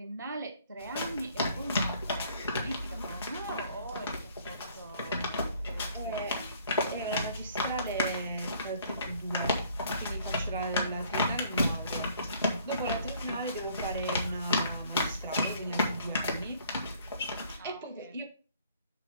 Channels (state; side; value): inverted; both; correlation -0.60